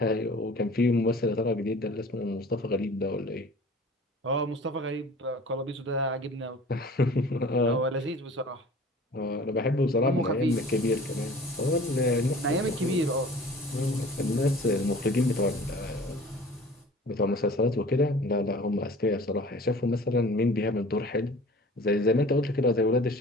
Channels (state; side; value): normal; both; correlation 0.45